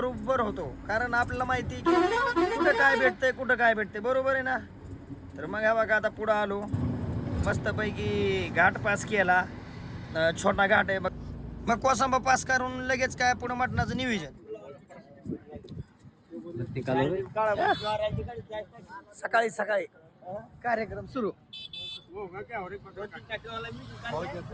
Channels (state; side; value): identical; both; correlation 1.00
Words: होतो, कारण आपल्याला माहिती की कुठं काय भेटतंय बरोबर आहे ना. तर मग हा बघा आता पुढं आलो, मस्तपैकी घाट पास केला. छोटा घाट आहे मग कोसंबा पास करून लगेच काय पुढं मटणाचं नियोजन. सकाळी सकाळी कार्यक्रम सुरू.